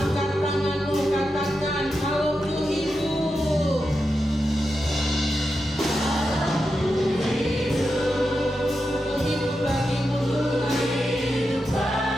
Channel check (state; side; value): normal; both; correlation 0.88